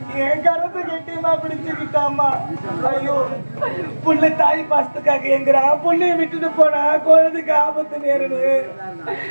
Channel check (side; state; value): both; inverted; correlation -1.00